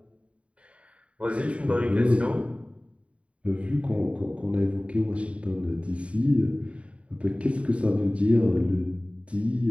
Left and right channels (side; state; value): left; late; 0.062 ms